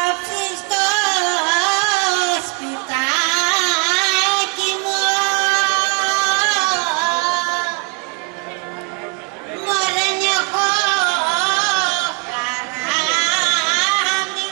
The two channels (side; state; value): left; quieter; 31.4 dB